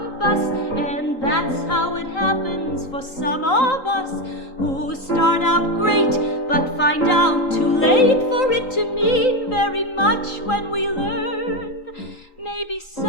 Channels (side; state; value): right; late; 3.8 ms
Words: bus, and that's how it happens for some of us who start out great but find out too late for it to mean very much when we learn. Maybe